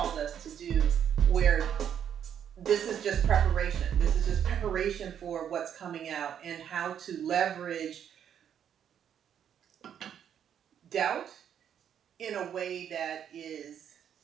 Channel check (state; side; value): quieter; left; 9.0 dB